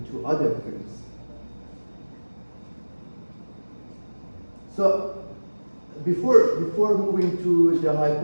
to other firms. So before moving to the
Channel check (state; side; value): inverted; both; correlation -1.00